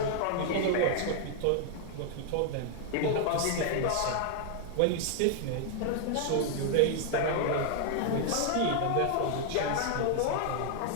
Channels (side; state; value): both; different; correlation 0.00